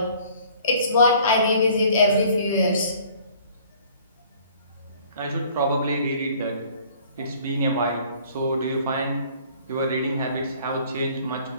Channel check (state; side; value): inverted; both; correlation -0.54